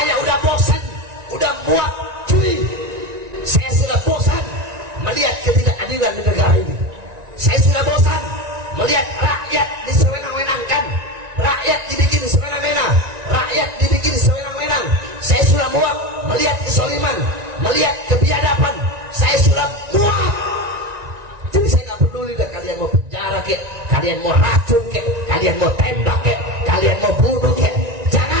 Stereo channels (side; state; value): left; late; 1.9 ms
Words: udah bosan, udah muak, cuy. Saya sudah bosan melihat ketidakadilan di negara ini. Saya sudah bosan melihat rakyat disewenang-wenangkan, rakyat dibikin sewenang-wenang, rakyat dibikin sewenang-wenang. Saya sudah muak melihat kesoliman, melihat kebiadaban. Saya sudah muak. Jadi saya nggak peduli dah kalian mau penjara kek, kalian mau racun kek, kalian mau tembak kek, kalian mau bunuh kek.